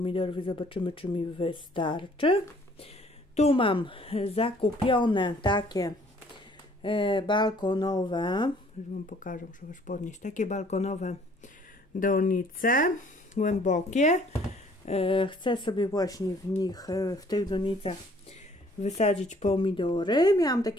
i zobaczymy, czy mi wystarczy. Tu mam zakupione takie balkonowe, już Wam pokażę, muszę już podnieść, takie balkonowe donice głębokie. Chcę sobie właśnie w tych donicach wysadzić pomidory. Miałam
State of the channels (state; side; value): normal; both; correlation 0.59